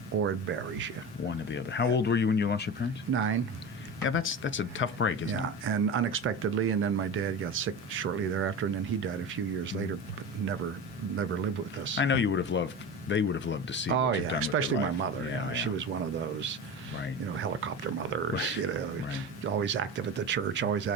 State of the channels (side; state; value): both; normal; correlation 0.27